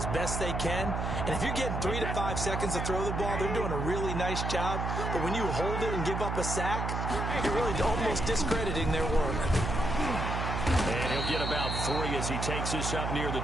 best they can. And if you're getting 3 to 5 seconds to throw the ball, they're doing a really nice job. But when you hold it and give up a sack, you're really almost discrediting their work. And he'll get about 3 as he takes this up near the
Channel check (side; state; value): right; noise; hum, 2 dB below the sound